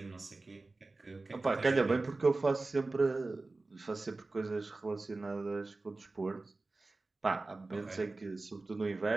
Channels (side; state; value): left; quieter; 3.4 dB